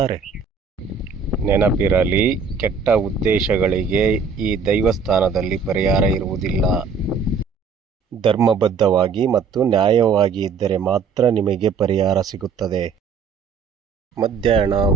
ನೆನಪಿರಲಿ, ಕೆಟ್ಟ ಉದ್ದೇಶಗಳಿಗೆ ಈ ದೈವಸ್ಥಾನದಲ್ಲಿ ಪರಿಹಾರ ಇರುವುದಿಲ್ಲ. ಧರ್ಮಬದ್ಧವಾಗಿ ಮತ್ತು ನ್ಯಾಯವಾಗಿ ಇದ್ದರೆ ಮಾತ್ರ ನಿಮಗೆ ಪರಿಹಾರ ಸಿಗುತ್ತದೆ. ಮಧ್ಯಾಹ್ನ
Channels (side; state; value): left; quieter; 5.5 dB